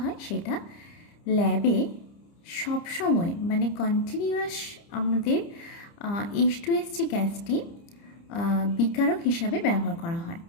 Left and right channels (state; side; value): late; right; 30 ms